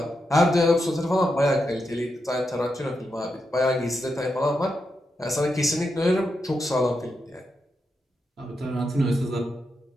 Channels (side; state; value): both; normal; correlation 0.85